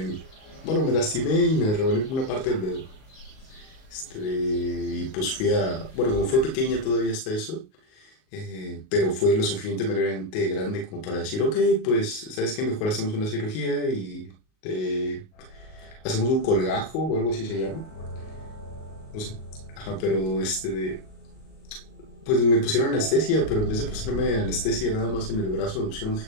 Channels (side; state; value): right; late; 38 ms